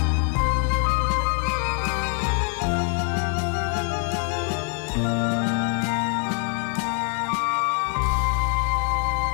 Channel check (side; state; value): right; quieter; 39.7 dB